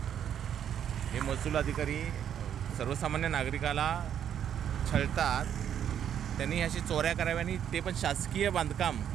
हे महसूल अधिकारी सर्वसामान्य नागरिकाला छळतात. त्यांनी अशी चोऱ्या कराव्या, आणि ते पण शासकीय बांधकाम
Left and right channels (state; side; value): quieter; left; 9.4 dB